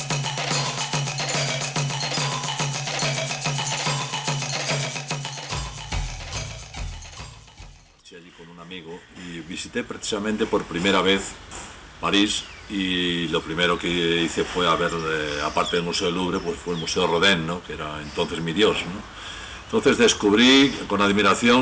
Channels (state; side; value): identical; both; correlation 1.00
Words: Allí con un amigo y visité precisamente por primera vez París, y lo primero que hice fue a ver, aparte del Museo del Louvre, pues fue el Museo Rodin, ¿no?, que era entonces mi dios, ¿no? Entonces descubrí con